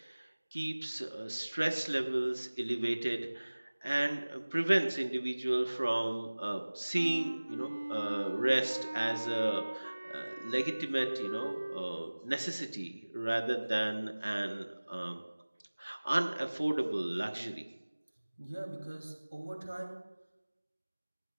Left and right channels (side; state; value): both; inverted; correlation -1.00